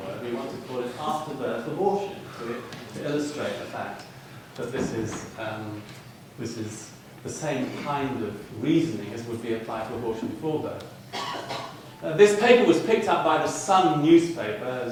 We want to call it after-birth abortion, to illustrate the fact that this is the same kind of reasoning as would be applied to abortion before birth. This paper was picked up by the Sun newspaper,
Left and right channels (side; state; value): both; identical; correlation 1.00